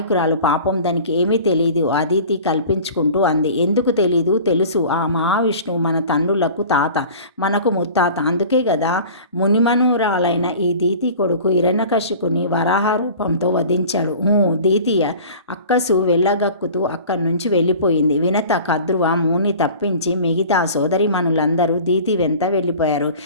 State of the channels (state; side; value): inverted; both; correlation -0.42